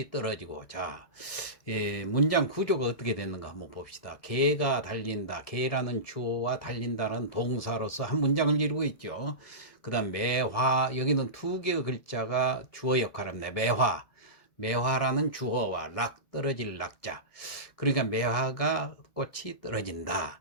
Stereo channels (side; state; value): right; late; 1.7 ms